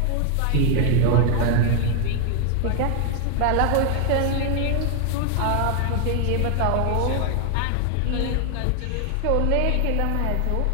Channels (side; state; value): both; different; correlation 0.00